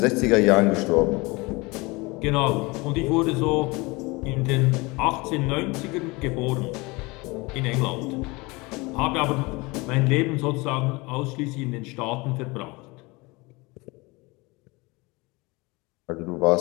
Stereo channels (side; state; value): right; quieter; 24.6 dB